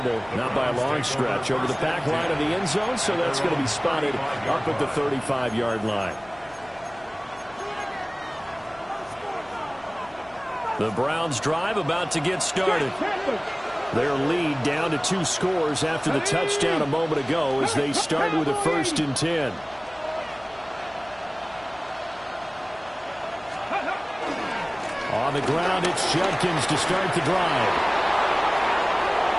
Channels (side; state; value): left; noise; hum, 25 dB below the sound